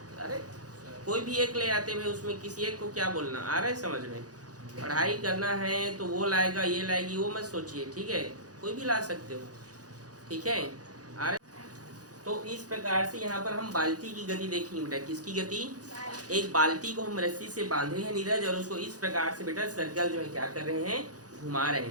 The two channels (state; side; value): late; left; 0.68 ms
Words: अरे कोई भी एक ले आते हैं, उसमें किसी एक को क्या बोलना आ रहा है समझ में। पढ़ाई करना है तो वो लाएगा, ये लाएगी, वो मत सोचिए, ठीक है। कोई भी ला सकते हो, ठीक है। आ रहे? तो इस प्रकार से यहाँ पर हम बाल्टी की गति देखेंगे बेटा। किसकी गति? एक बाल्टी को हम रस्सी से बांधे हैं नीरज, और उसको इस प्रकार से बेटा सर्कल जो है क्या कर रहे हैं, घुमा रहे